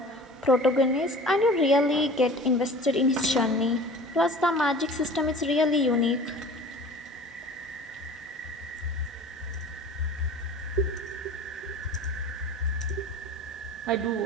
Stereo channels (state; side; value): normal; both; correlation 0.41